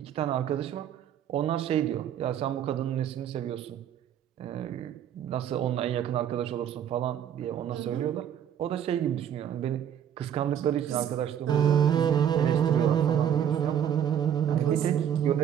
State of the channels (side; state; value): left; quieter; 9.5 dB